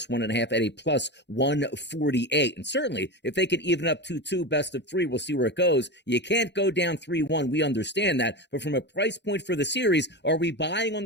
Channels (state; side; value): late; right; 0.51 ms